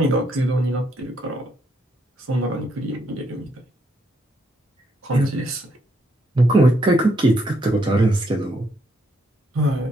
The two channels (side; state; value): both; normal; correlation 0.75